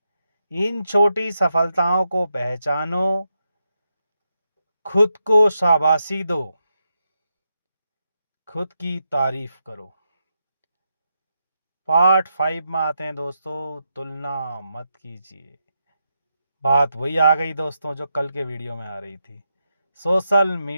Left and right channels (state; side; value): inverted; both; correlation -0.85